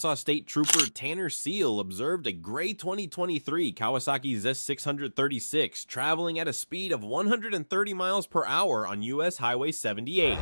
State Trooper Tanner Seal observed a gray 2023 Kawasaki Z636 traveling at a speed of 130 miles per hour on US Highway 78.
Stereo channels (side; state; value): both; inverted; correlation -1.00